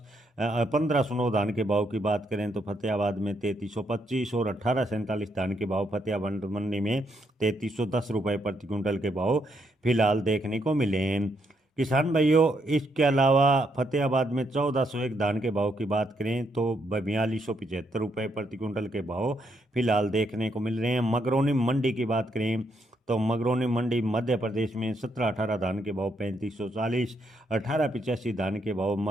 1509 धान के भाव की बात करें तो फतेहाबाद में 3325 और 1847 धान के भाव फतेहाबाद मंडी में 3310 रुपये प्रति क्विंटल के भाव फिलहाल देखने को मिले हैं। किसान भाइयों, इसके अलावा फतेहाबाद में 1401 धान के भाव की बात करें तो 4275 रुपये प्रति क्विंटल के भाव फिलहाल देखने को मिल रहे हैं। मगरौनी मंडी की बात करें तो मगरौनी मंडी मध्य प्रदेश में 1718 धान के भाव 3540। 1885 धान के भाव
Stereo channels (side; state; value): both; normal; correlation 0.76